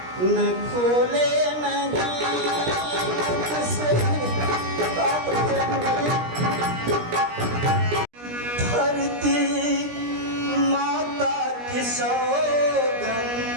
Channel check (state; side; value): late; left; 17 ms